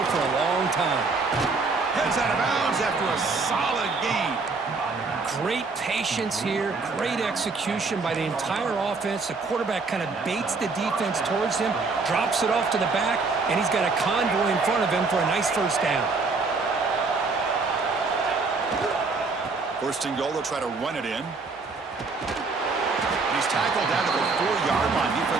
for a long time. Heads out of bounds after a solid gain. Great patience here, great execution by the entire offense. The quarterback kind of baits the defense towards him, drops it off to the back, and he's got a convoy in front of him for a nice first down. First and goal, they'll try to run it in. He's tackled down to the 4-yard line.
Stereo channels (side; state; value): left; quieter; 4.2 dB